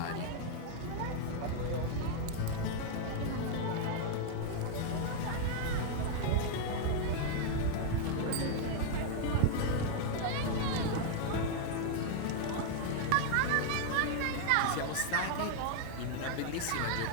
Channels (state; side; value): different; both; correlation 0.00